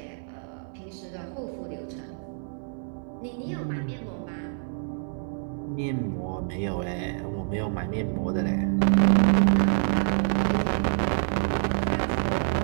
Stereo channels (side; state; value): left; silent; digital silence